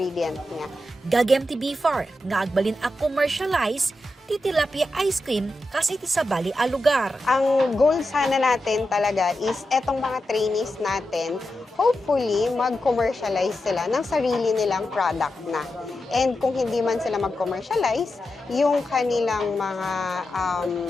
niya. Gagem ti Bifar, nga agbalin a commercialize ti tilapia ice cream kasi ti sa bali a lugar. Ang goal sana natin talaga is etong mga trainees natin, hopefully mag-commercialize sila ng sarili nilang product na. And kung hindi man sila mag-commercialize, yung kanilang mga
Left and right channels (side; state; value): both; normal; correlation 0.89